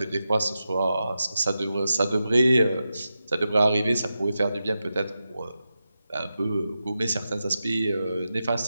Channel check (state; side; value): inverted; both; correlation -0.90